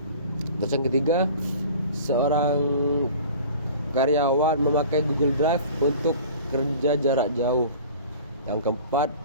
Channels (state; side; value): inverted; both; correlation -0.43